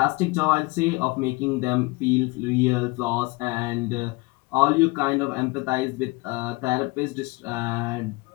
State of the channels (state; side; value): quieter; right; 24.5 dB